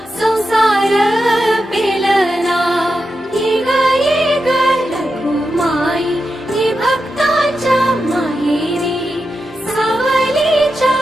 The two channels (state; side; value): normal; both; correlation 0.88